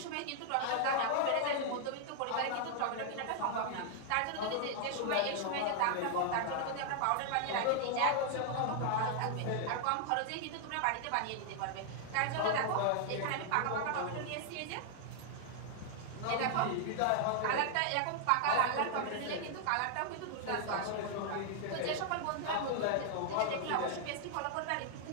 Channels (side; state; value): both; different; correlation 0.00